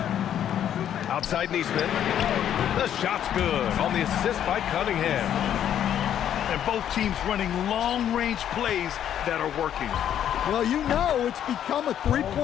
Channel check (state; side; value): quieter; right; 10.1 dB